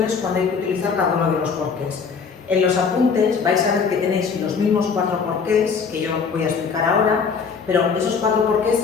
cuándo hay que utilizar cada uno de los porqués. En los apuntes vais a ver que tenéis los mismos 4 porqués que yo voy a explicar ahora, pero esos 4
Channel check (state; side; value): quieter; right; 5.7 dB